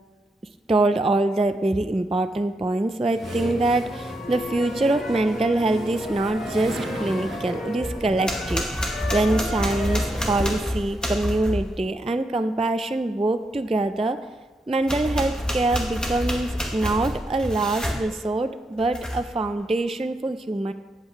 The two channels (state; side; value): normal; both; correlation 0.81